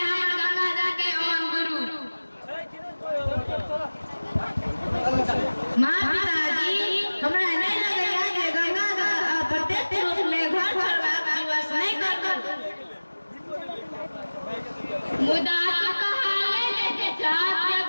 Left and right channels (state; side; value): inverted; both; correlation -1.00